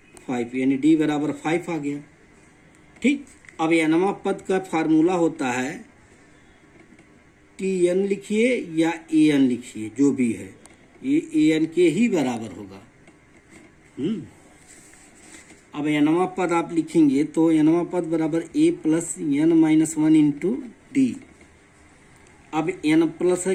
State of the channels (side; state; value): both; identical; correlation 1.00